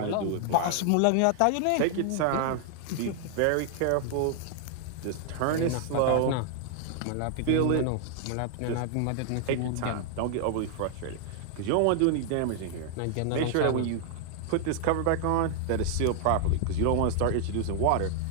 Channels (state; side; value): different; both; correlation 0.00